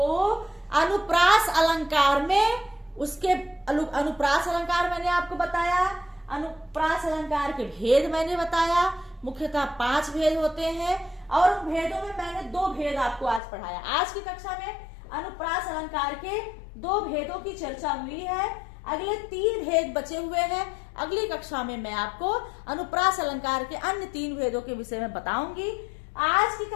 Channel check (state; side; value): drops out; right; at 13.4 s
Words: अनुप्रास अलंकार में उसके अनुप्रास अलंकार मैंने आपको बताया, अनुप्रास अलंकार के भेद मैंने बताया। मुख्यतः 5 भेद होते हैं, और उन भेदों में मैंने 2 भेद आपको आज पढ़ाया। आज की कक्षा में अनुप्रास अलंकार के 2 भेदों की चर्चा हुई है। अगले 3 भेद बचे हुए हैं। अगली कक्षा में मैं आपको अनुप्रास अलंकार के अन्य 3 भेदों के विषय में बताऊंगी। आज की